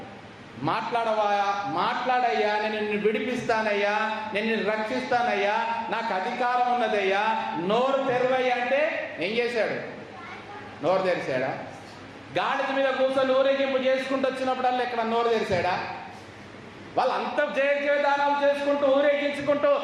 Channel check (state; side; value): identical; both; correlation 1.00